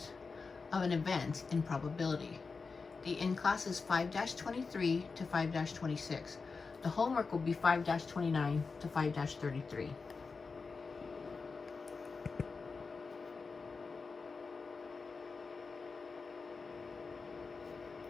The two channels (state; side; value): quieter; right; 4.6 dB